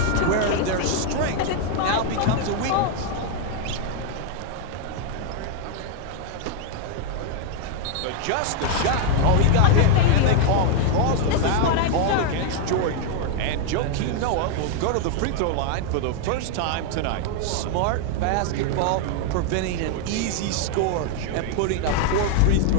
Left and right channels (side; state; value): both; different; correlation 0.00